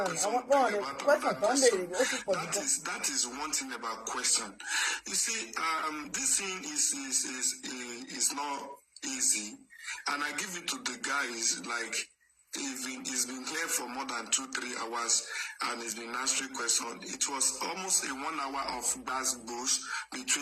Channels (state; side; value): identical; both; correlation 1.00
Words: bring about another question. That is one thing about question. You see, this thing is not easy, and I give it to the guys like. He's been here for more than 2-3 hours and he's been answering questions. It was almost a 1 hour of bass bush